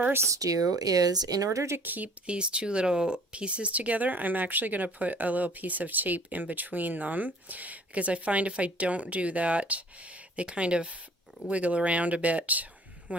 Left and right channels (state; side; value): normal; both; correlation 0.52